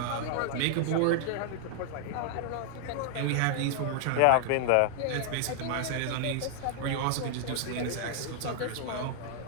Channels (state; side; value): different; both; correlation 0.00